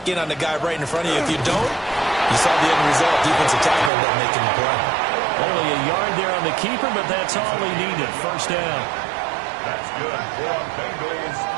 in on the guy right in front of you. If you don't, you saw the end result. Defensive tackle ended up making the play. Only a yard there on the keeper, but that's all he needed. 1st down. That's good for Bengals.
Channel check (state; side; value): drops out; left; at 3.9 s